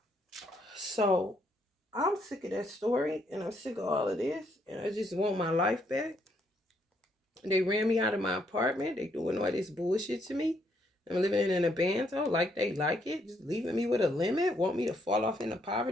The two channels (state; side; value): normal; both; correlation 0.72